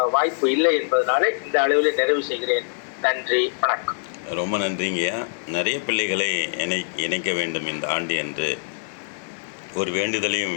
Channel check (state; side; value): silent; right; digital silence